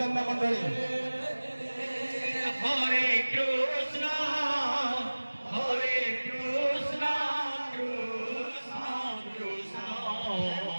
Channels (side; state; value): both; inverted; correlation -1.00